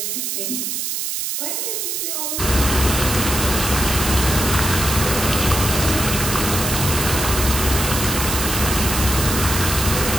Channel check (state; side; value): noise; right; hiss, 2 dB below the sound